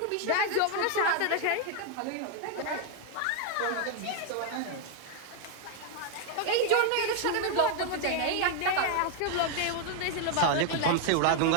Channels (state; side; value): different; both; correlation 0.00